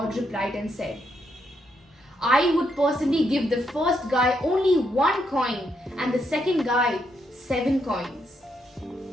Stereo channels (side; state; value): both; normal; correlation 0.78